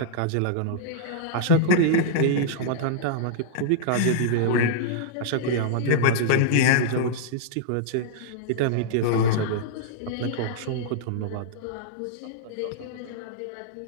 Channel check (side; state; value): both; different; correlation -0.02